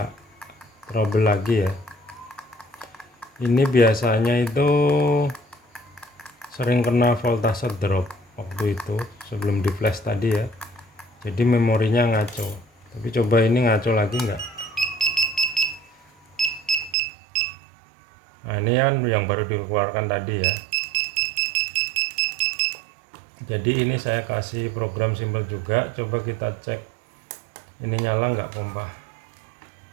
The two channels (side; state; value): left; drops out; at 16.9 s